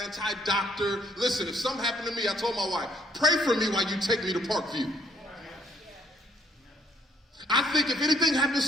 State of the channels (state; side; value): normal; both; correlation 0.66